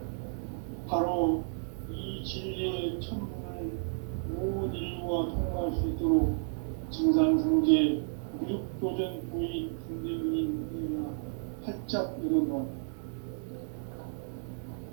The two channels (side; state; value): left; silent; digital silence